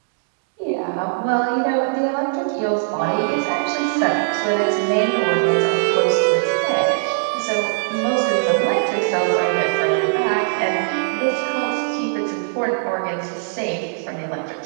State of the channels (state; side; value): silent; left; digital silence